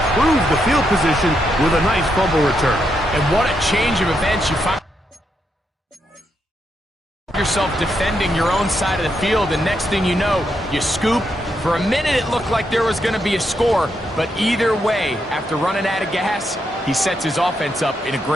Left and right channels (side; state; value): both; normal; correlation 0.81